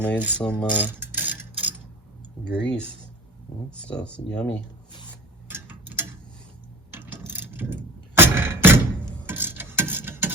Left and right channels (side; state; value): both; normal; correlation 0.37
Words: some grease? That stuff's yummy.